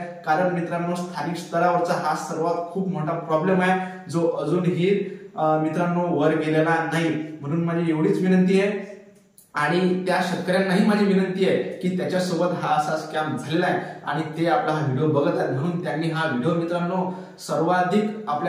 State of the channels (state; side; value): identical; both; correlation 1.00